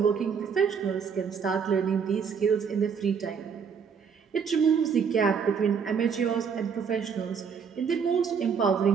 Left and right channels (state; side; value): quieter; left; 6.4 dB